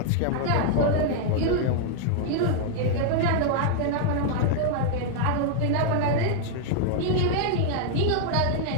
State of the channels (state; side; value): different; both; correlation -0.01